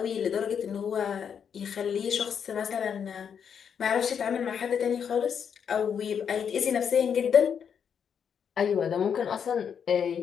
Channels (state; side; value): quieter; right; 7.5 dB